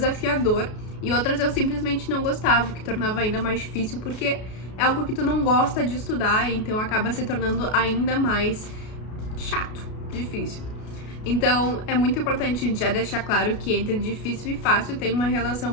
E outras eu simplesmente não gostava, o que tornava ainda mais difícil, porque é algo que tu não gosta de estudar, então acaba se tornando ainda mais chato, difícil. Então, é muito importante já deixar claro que entre difícil e fácil tem uma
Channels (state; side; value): late; right; 33 ms